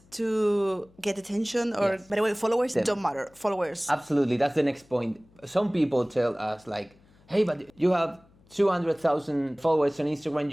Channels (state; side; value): noise; left; hum, 30 dB below the sound